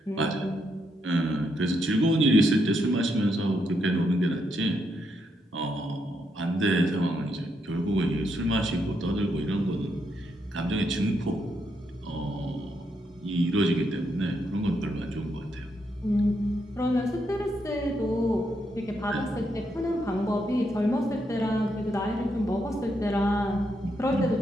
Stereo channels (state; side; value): normal; both; correlation 0.79